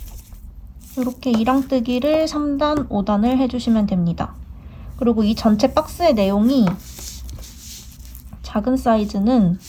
이렇게 2랑뜨기를 3단, 5단을 해주시면 됩니다. 그리고 이 전체 박스의 내용이 작은 사이즈는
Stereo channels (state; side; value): identical; both; correlation 1.00